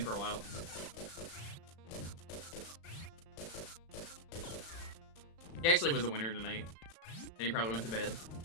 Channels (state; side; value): late; right; 36 ms